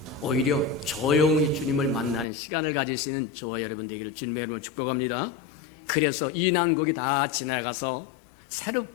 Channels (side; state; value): right; drops out; at 2.2 s